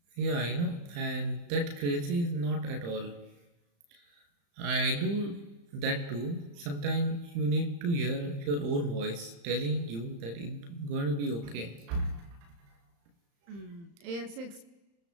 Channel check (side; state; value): left; late; 35 ms